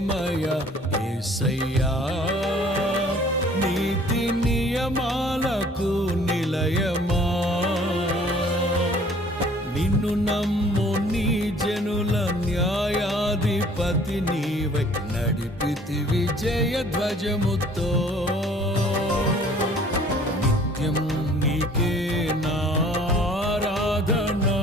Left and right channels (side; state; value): both; normal; correlation 0.54